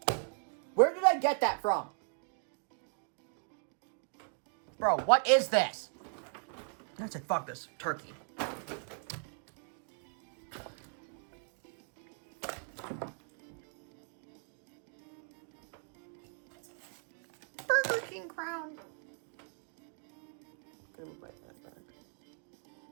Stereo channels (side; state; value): left; silent; 53 dB below the other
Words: Where did I get that from? Bro, what is this? I said, fuck this. Turkey. Burger King crown.